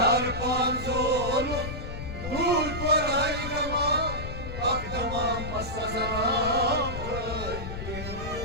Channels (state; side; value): noise; left; rumble, 7 dB below the sound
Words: zolu, dur kor hay gama akdama masazara.